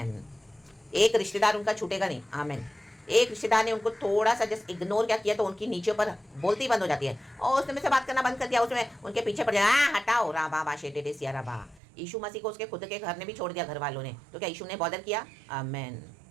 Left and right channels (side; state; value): left; drops out; at 11.8 s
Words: एक रिश्तेदार उनका छूटेगा नहीं। आमेन। एक रिश्तेदार ने उनको थोड़ा सा जस्ट इग्नोर क्या किया तो उनकी नीचे पर बोलती बंद हो जाती है, और उसने मुझसे बात करना बंद कर दिया, उसमें उनके पीछे पड़ जाए, हटाओ राबा बाशे टेटे सिया राबा। यीशु मसीह को उसके खुद के घर ने भी छोड़ दिया, घर वालों ने, तो क्या यीशु ने बॉदर किया? आमेन,